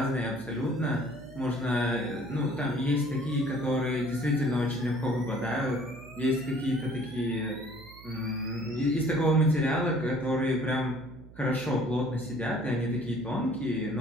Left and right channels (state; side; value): noise; right; hum, 19 dB below the sound